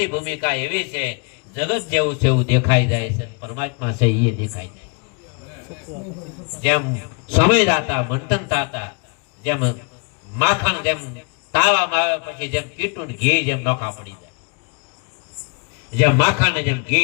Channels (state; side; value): quieter; right; 34.2 dB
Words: ભૂમિકા એવી છે, જગત જેવું છે એવું દેખાઈ જાય છે, પરમાત્મા છે એ દેખાઈ જાય. જેમ સમય દાતા મંથન થતા, જેમ માખણ જેમ તાવામાં આવે પછી જેમ કીટું ઘી જેમ નોખા પડી જાય, જેમ માખણ ને જેમ